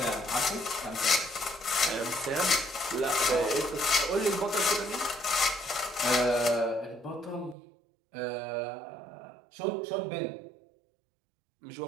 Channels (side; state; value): left; drops out; at 7.6 s